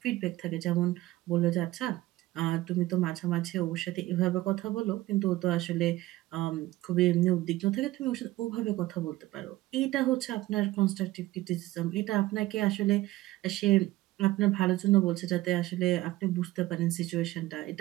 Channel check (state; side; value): quieter; left; 17.1 dB